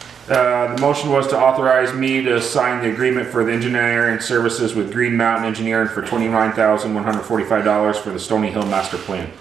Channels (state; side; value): quieter; left; 7.3 dB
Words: the motion was to authorize me to sign the agreement for the engineering services with Green Mountain Engineering for $29,145 for the Stony Hill Master Plan.